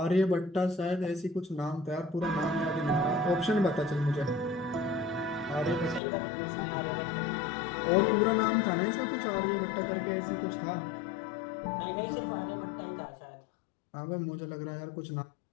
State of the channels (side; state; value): right; drops out; at 6.0 s